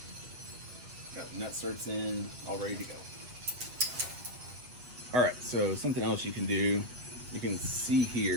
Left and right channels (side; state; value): left; late; 8.2 ms